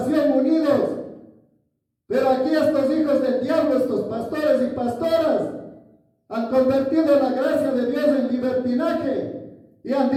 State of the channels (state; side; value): identical; both; correlation 1.00